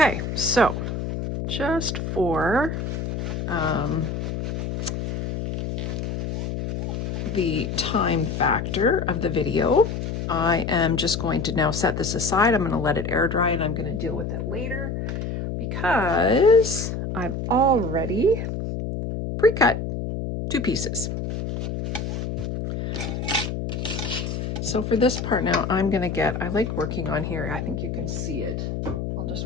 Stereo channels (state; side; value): noise; left; hum, 3 dB below the sound